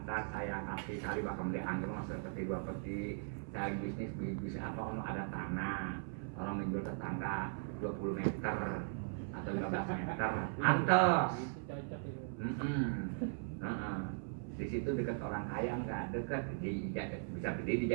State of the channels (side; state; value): left; silent; 52 dB below the other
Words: saya kasih cari bakal dianggur mas seperti 2 peti. Saya bisnis apa kalau ada tanah, orang menjual tetangga 20 meter atau 15 meter, pantes. Di situ dekat orang kaya nggak dekat, bisa beli